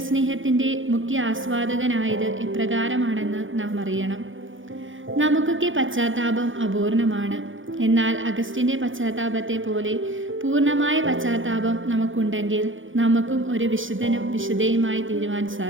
മുഖ്യ ആസ്വാദകനായത് എപ്രകാരമാണെന്ന് നാം അറിയണം. നമുക്കൊക്കെ പശ്ചാത്താപം അപൂർണമാണ്. എന്നാൽ അഗസ്റ്റിൻ്റെ പശ്ചാത്താപത്തെ പോലെ പൂർണ്ണമായ പശ്ചാത്താപം നമുക്കുണ്ടെങ്കിൽ നമുക്കും ഒരു വിശുദ്ധനും വിശുദ്ധയുമായി തീരുവാൻ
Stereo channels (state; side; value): late; left; 0.57 ms